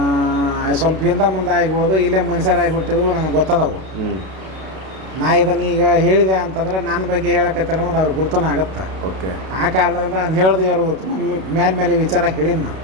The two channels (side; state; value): left; late; 32 ms